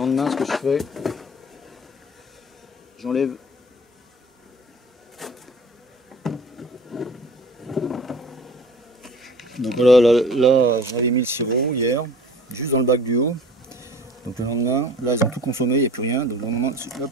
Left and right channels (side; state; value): both; normal; correlation 0.44